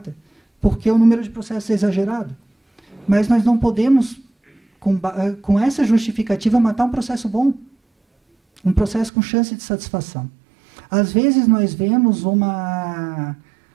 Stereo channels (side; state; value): left; drops out; at 9.1 s